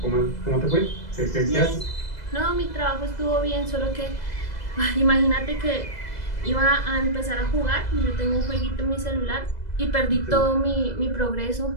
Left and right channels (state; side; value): late; right; 2.0 ms